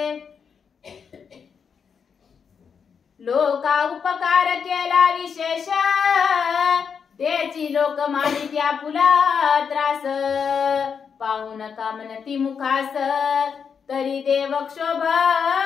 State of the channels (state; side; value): quieter; right; 6.6 dB